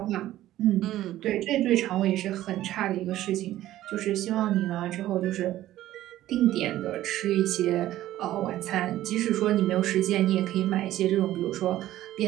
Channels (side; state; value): left; quieter; 14.2 dB